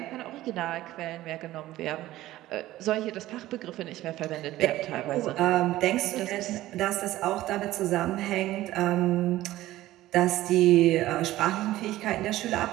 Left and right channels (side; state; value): left; quieter; 15.6 dB